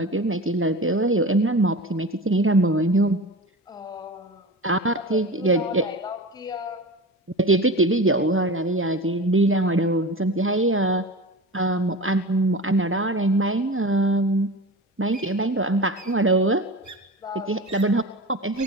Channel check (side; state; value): both; normal; correlation 0.31